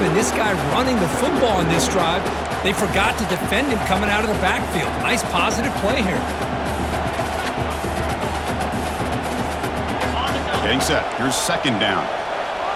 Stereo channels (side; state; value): both; identical; correlation 1.00